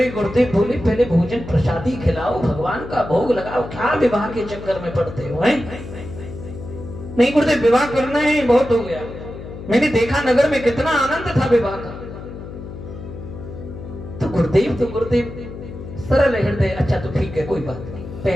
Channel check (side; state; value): left; noise; hum, 12 dB below the sound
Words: गुरुदेव बोले, पहले भोजन प्रसादी खिलाओ, भगवान का भोग लगाओ, क्या विवाह के चक्कर में पड़ते हो? नहीं गुरुदेव, विवाह करना है, बहुत हो गया। मैंने देखा नगर में कितना आनंद था विवाह का। तो गुरुदेव सरल हृदय, अच्छा तो ठीक है, कोई बात नहीं,